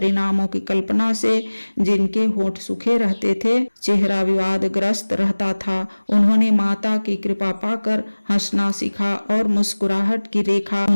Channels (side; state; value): both; inverted; correlation -1.00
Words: की कल्पना से जिनके होंठ सूखे रहते थे, चेहरा विवादग्रस्त रहता था, उन्होंने माता की कृपा पाकर हंसना सीखा और मुस्कुराहट की रेखा